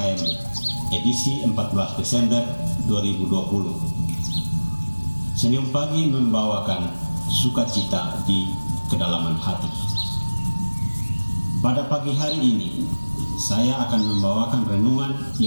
edisi 14 Desember 2020. Senyum pagi membawakan sukacita di kedalaman hati. Pada pagi hari ini, saya akan membawakan renungan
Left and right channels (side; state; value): both; inverted; correlation -1.00